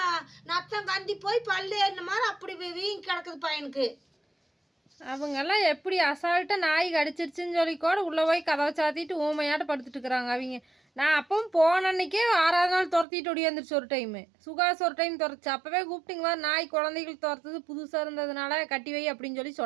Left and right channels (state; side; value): drops out; left; at 13.1 s